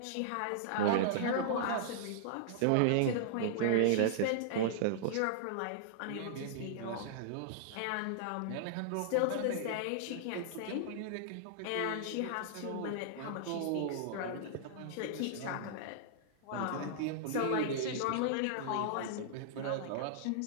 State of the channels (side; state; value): both; different; correlation -0.01